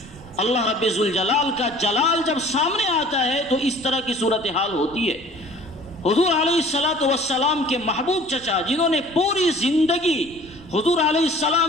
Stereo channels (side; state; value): right; noise; rumble, 21 dB below the sound